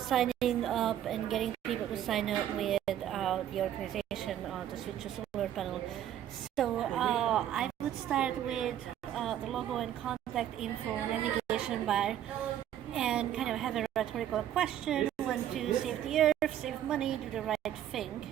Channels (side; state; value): left; quieter; 11.1 dB